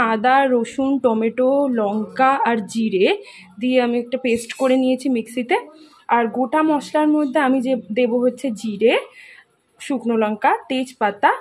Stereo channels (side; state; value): both; identical; correlation 1.00